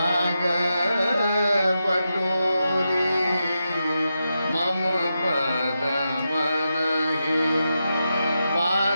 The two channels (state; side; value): inverted; both; correlation -0.88